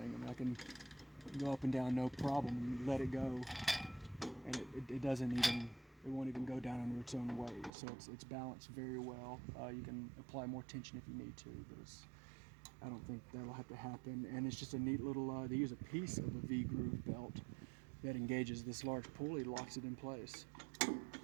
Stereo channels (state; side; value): drops out; left; at 7.7 s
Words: I mean, I can go up and down no problem and let it go, and it won't even go down under its own weight. So it's balanced very well. You can apply more tension if you need to, but I don't think that'll have to happen. And it's just a neat little, they use a piece of a V-groove belt that engages this large pulley, locks it in place. And